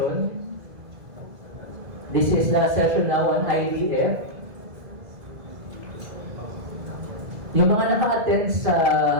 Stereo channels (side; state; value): left; late; 2.0 ms